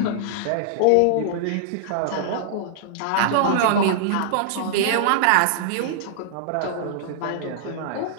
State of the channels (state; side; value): different; both; correlation -0.01